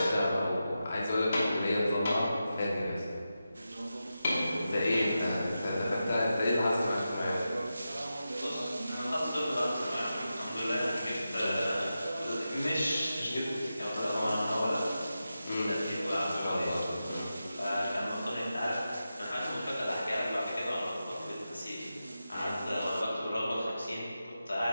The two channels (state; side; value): inverted; both; correlation -0.91